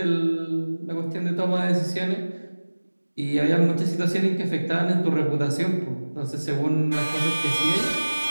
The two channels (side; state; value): both; inverted; correlation -1.00